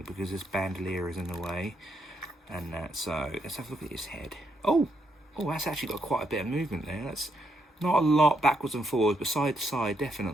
because this bandolier is in the way. And so, let's have a look at his head. Oh, that's actually got quite a bit of movement there. That's not a lot backwards and forwards, but side to side,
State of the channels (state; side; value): normal; both; correlation 0.77